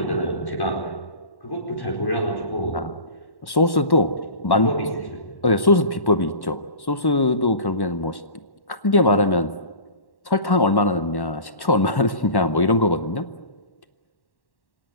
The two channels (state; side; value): late; right; 1.1 ms